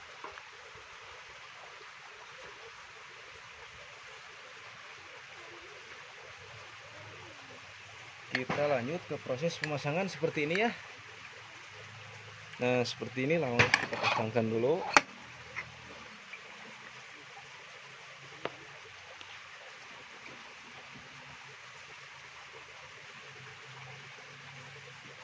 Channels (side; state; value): both; identical; correlation 1.00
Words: Kita lanjut ke proses pemasangan seperti ini ya. Nah seperti ini, langsung kita pasangkan dulu.